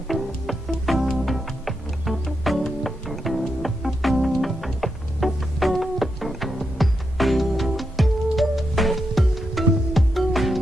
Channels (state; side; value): normal; both; correlation 0.84